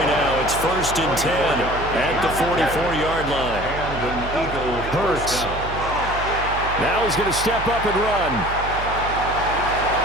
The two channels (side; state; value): right; noise; hum, 8 dB below the sound